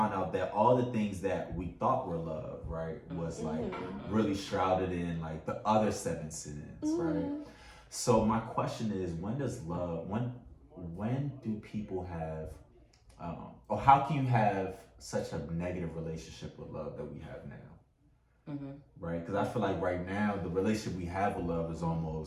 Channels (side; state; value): both; identical; correlation 1.00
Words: out that all the things that we thought were love, right, was like really shrouded in like the other 7 sins, right? So my question is, when does love, when do people have, or how can you have such a negative relationship with love that we have now, right? Because I feel like right now the relationship we have with love is